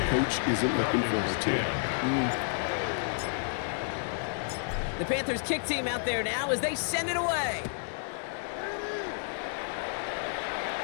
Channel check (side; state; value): right; silent; digital silence